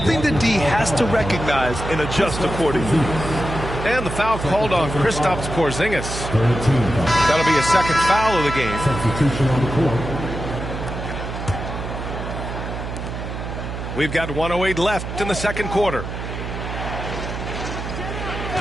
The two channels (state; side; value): noise; right; hum, 6 dB below the sound